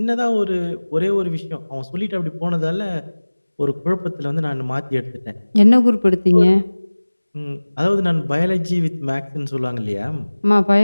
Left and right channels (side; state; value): both; inverted; correlation -1.00